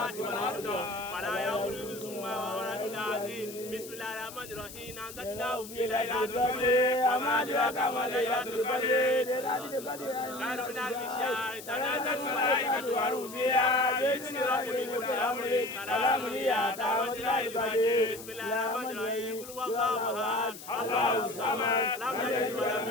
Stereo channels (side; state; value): left; noise; hiss, 14 dB below the sound